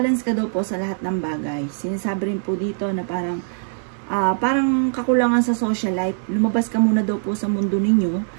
ka daw po sa lahat ng bagay. Sinasabi rin po dito na parang kakulangan sa social life. Lumabas ka muna daw po sa mundo ninyo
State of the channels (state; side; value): silent; left; digital silence